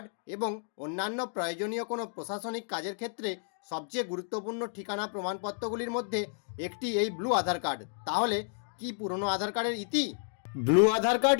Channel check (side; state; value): right; silent; digital silence